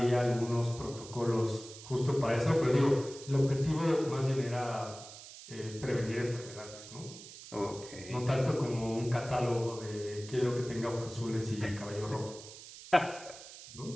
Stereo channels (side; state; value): right; noise; hiss, 15 dB below the sound